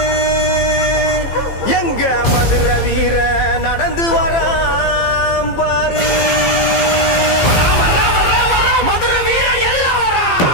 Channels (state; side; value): late; right; 15 ms